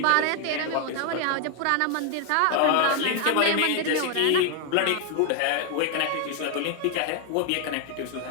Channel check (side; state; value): both; different; correlation 0.00